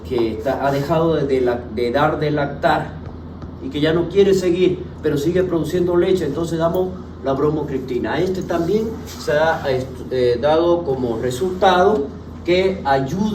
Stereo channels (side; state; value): both; identical; correlation 1.00